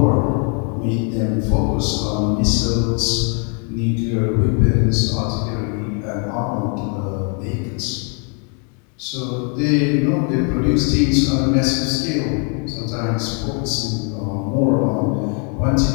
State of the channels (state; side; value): quieter; right; 38.8 dB